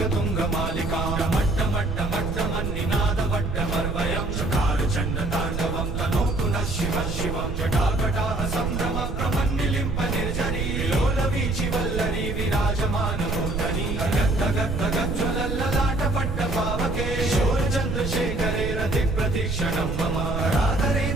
मट्टमट्टमट्टमन्निनादवट्टमर्वयं चकारचण्डताण्डवं तनोतु नः शिवः शिवं जटाकटाः सम्भ्रम प्रमन्निलिम्प निर्जरी लोलवीचि वल्लरी विराजमानमूर्धनि गद्गद्गज्ज्वलल्ललाटपट्टपावके शूरचन्द्रशेखरे रतिप्रतीक्षणं मम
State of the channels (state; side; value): noise; right; rumble, 3 dB below the sound